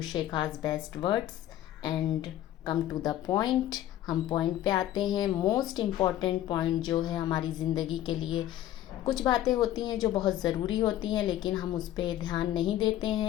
Shekha's best words and come to the point. हम पॉइंट पे आते हैं। मोस्ट इम्पॉर्टेंट पॉइंट जो है हमारी ज़िंदगी के लिए, कुछ बातें होती हैं जो बहुत ज़रूरी होती हैं लेकिन हम उस पर ध्यान नहीं देते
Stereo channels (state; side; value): quieter; right; 13.0 dB